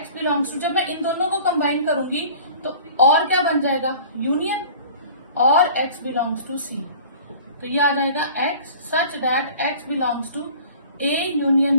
belongs to, जब मैं इन दोनों को कंबाइन करूंगी तो और क्या बन जाएगा? यूनियन और x बिलोंग्स टू c। तो ये आ जाएगा x such that x belongs to a union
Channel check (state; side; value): inverted; both; correlation -0.45